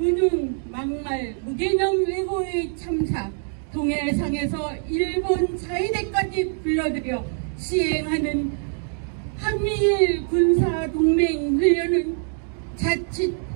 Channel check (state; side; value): silent; left; 58 dB below the other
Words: 막말, 무개념 왜고의 참사, 동해상에서 일본 자위대까지 불러들여 시행하는 한미일 군사동맹 훈련은 자칫